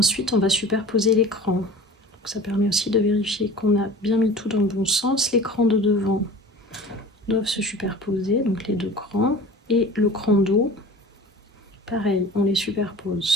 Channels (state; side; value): normal; both; correlation 0.40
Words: on va superposer l'écran. Ça permet aussi de vérifier qu'on a bien mis tout dans le bon sens. Les crans de devant doivent se superposer, donc les deux crans. Et le cran d'eau, pareil, on les